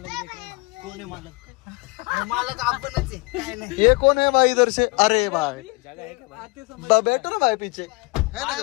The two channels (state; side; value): quieter; right; 26.9 dB